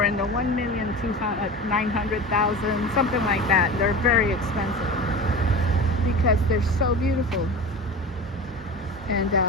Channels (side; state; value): both; normal; correlation 0.31